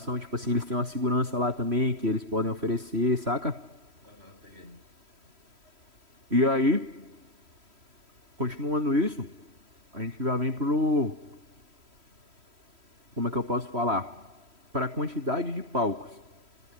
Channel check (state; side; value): late; left; 3.1 ms